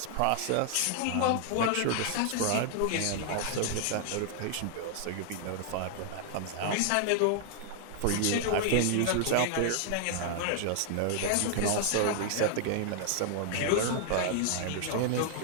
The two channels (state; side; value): different; both; correlation 0.00